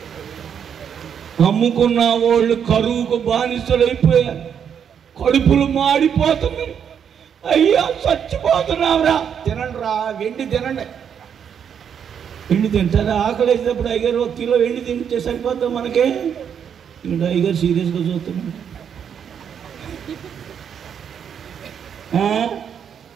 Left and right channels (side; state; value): left; quieter; 8.0 dB